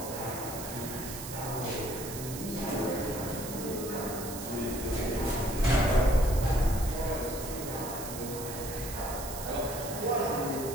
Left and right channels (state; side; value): noise; right; hiss, 9 dB below the sound